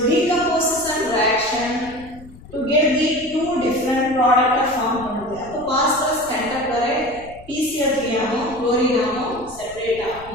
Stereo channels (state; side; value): noise; left; rumble, 20 dB below the sound